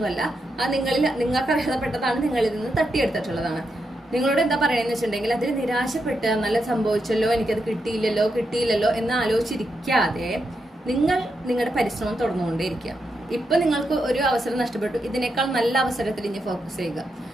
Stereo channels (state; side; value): normal; both; correlation 0.84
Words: അത് നിങ്ങൾക്ക് അർഹതപ്പെട്ടതാണ്, നിങ്ങളിൽ നിന്ന് തട്ടിയെടുത്തിട്ടുള്ളതാണ്. നിങ്ങളോട് എന്താ പറയണെന്ന് വെച്ചിട്ടുണ്ടെങ്കിൽ, അതിൽ നിരാശപ്പെട്ട് നല്ല സംഭവിച്ചല്ലോ, എനിക്കത് കിട്ടിയില്ലല്ലോ എന്ന് ആലോചിച്ചിരിക്കാതെ നിങ്ങൾ നിങ്ങളുടെ പരിശ്രമം തുടർന്നുകൊണ്ടേയിരിക്കുക. ഇപ്പൊ നിങ്ങൾക്ക് ഒരു അവസരം നഷ്ടപ്പെട്ടു, ഇതിനേക്കാൾ നല്ല അവസരത്തിൽ ഇനി ഫോക്കസ് ചെയ്യുക.